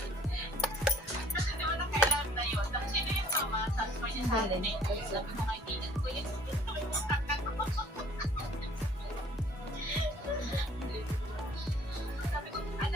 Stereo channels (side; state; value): both; normal; correlation 0.56